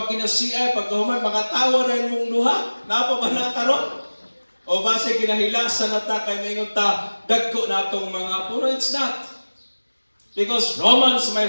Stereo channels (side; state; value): both; inverted; correlation -1.00